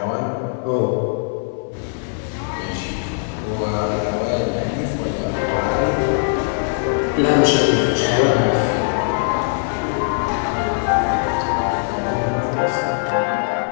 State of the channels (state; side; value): silent; right; 65 dB below the other